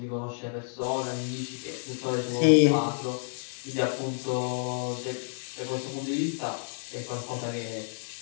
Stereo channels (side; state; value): right; silent; digital silence